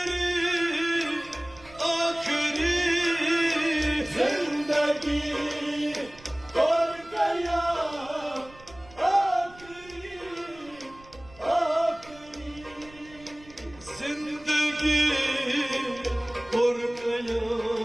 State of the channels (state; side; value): noise; right; rumble, 23 dB below the sound